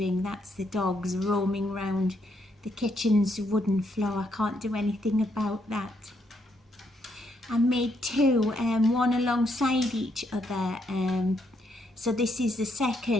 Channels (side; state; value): both; normal; correlation 0.75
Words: That's the dogs roaming round the kitchen's wooden floor. I can't do anything about that. I made two, one alongside each other. So this is the